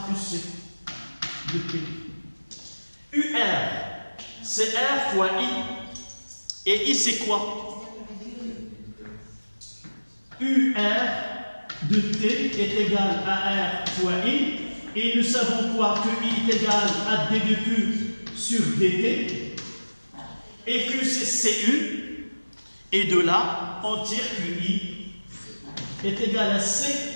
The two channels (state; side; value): inverted; both; correlation -1.00